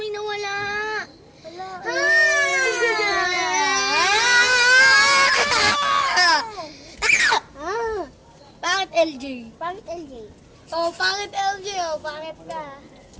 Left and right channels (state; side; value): identical; both; correlation 1.00